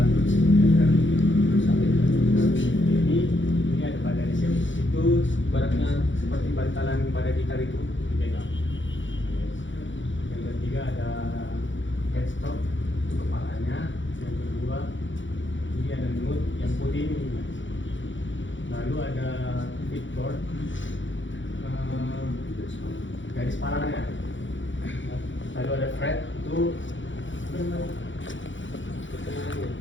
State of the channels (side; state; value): right; late; 0.55 ms